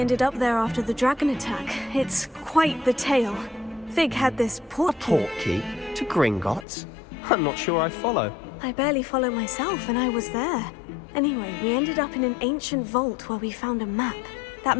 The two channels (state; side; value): drops out; right; at 6.7 s